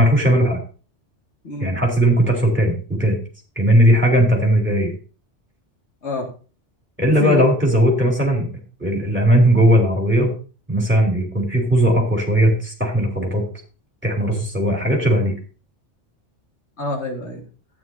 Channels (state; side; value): normal; both; correlation 0.56